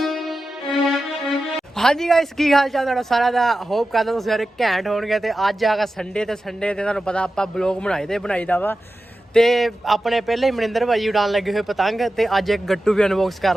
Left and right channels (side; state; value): both; normal; correlation 0.93